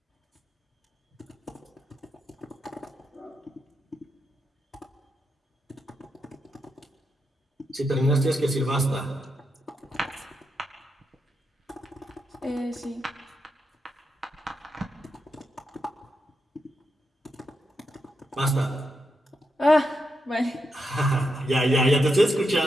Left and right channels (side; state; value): both; normal; correlation 0.84